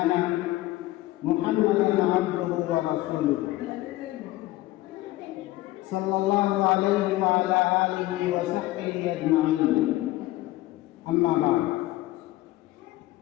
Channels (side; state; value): right; quieter; 17.1 dB